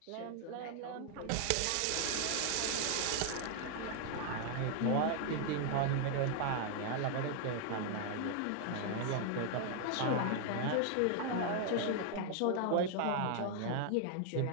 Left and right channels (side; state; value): both; different; correlation 0.00